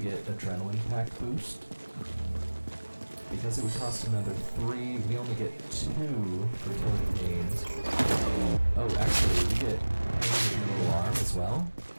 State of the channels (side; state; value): both; inverted; correlation -1.00